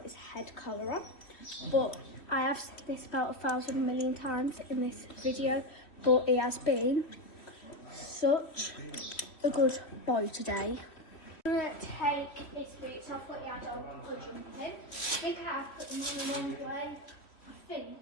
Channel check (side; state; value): right; late; 3.1 ms